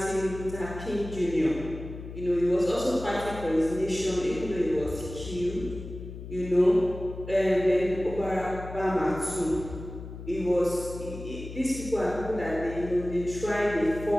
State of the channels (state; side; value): noise; left; hum, 11 dB below the sound